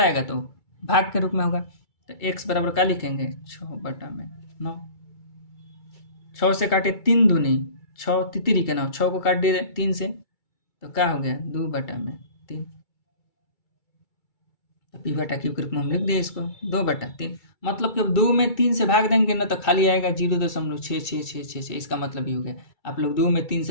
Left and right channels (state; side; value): late; right; 2.3 ms